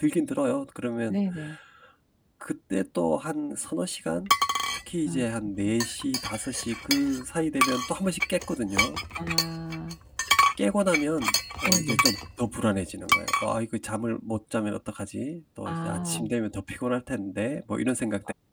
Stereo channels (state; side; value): identical; both; correlation 1.00